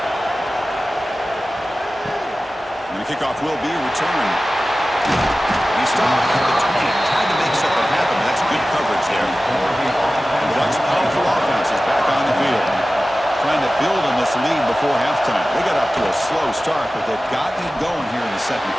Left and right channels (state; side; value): normal; both; correlation 0.96